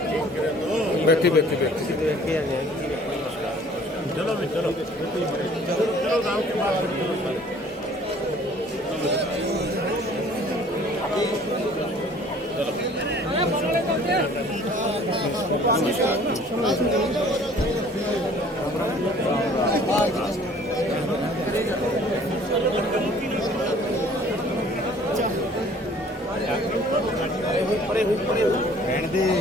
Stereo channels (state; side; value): normal; both; correlation 0.53